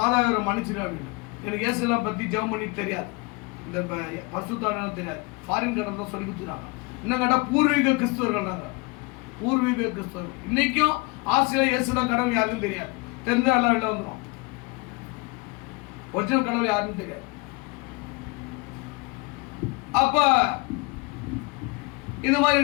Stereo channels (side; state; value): right; quieter; 26.9 dB